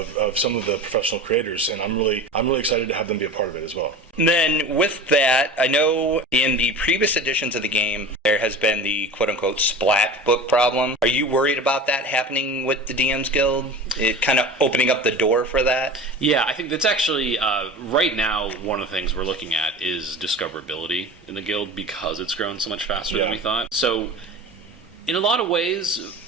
some of the professional creators, and I'm really excited to have them be a part of it as well. And then with that, I know in the previous editions of the game, there has been the quote-unquote splat book problem. Are you worried about that happening with the DMs Guild? It kind of opening up the door for that? Yeah, I think that's actually, right now, one of the things we're looking at is discoverability in the guild because it's grown so much faster than we thought. So, in a lot of ways,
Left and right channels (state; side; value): normal; both; correlation 0.34